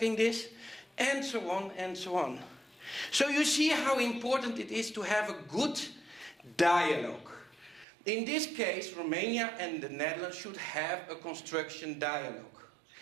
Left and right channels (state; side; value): drops out; left; at 7.9 s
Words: this. And so on and so on. So you see how important it is to have a good dialogue. In this case, Romania and the Netherlands should have a construction dialogue.